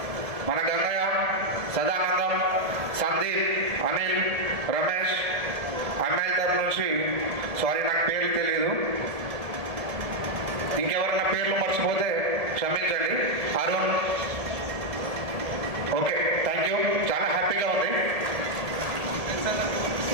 మన గంగయ్య, సదానందం, సందీప్, అనిల్, రమేష్, అమ్మాయిల తరఫు నుంచి సారీ, నాకు పేర్లు తెలీదు. ఇంకెవరన్నా పేర్లు మర్చిపోతే క్షమించండి. అరుణ్. Okay, thank you. చాలా హ్యాపీగా ఉంది.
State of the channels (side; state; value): left; late; 1.8 ms